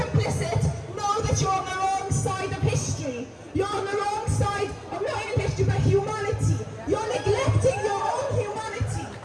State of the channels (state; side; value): identical; both; correlation 1.00